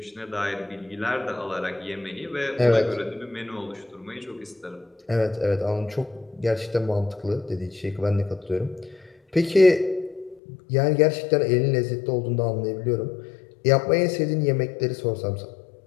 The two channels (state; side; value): drops out; right; at 10.4 s